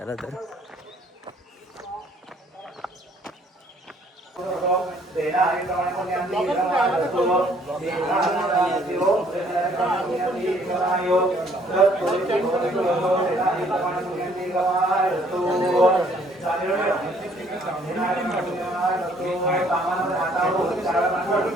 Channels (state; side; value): normal; both; correlation 0.62